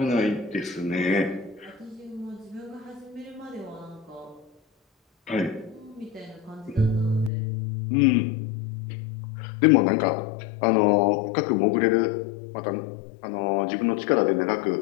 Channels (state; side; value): drops out; right; at 7.3 s